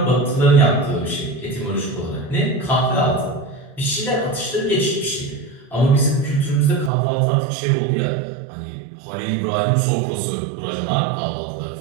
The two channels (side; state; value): left; drops out; at 6.9 s